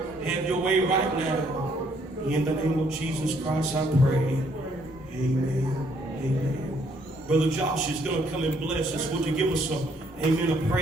Have your way right now. In the name of Jesus Christ, I pray. Amen. Amen. Brother Josh is going to come and bless us. Would you give us some, amen, a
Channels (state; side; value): normal; both; correlation 0.67